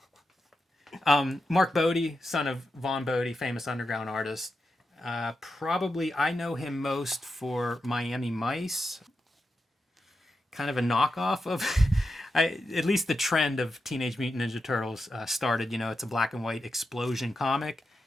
Mark Bode, son of Vaughn Bode, famous underground artist. Probably I know him most for Miami Mice. Kind of a knockoff of, at least the trend of Teenage Mutant Ninja Turtles started. It's a black and white explosion comic,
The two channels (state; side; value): normal; both; correlation 0.88